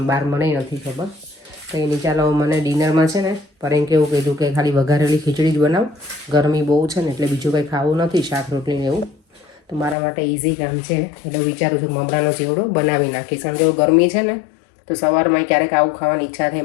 બહાર, મને નથી ખબર. કંઈ નહીં, ચાલો મને ડિનરમાં છે ને પર એમ કેવું કીધું કે ખાલી વઘારેલી ખીચડી જ બનાવ. ગરમી બહુ છે ને એટલે બીજું કંઈ ખાવું નથી, શાક રોટલી ને એવું. તો મારા માટે ઇઝી કામ છે એટલે વિચારું છું મમરાનો ચેવડો બનાવી નાખીશ. કારણ કે ગરમી છે ને તો સવારમાં ક્યારેક આવું ખાવાની ઈચ્છા થાય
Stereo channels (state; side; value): drops out; right; at 10.0 s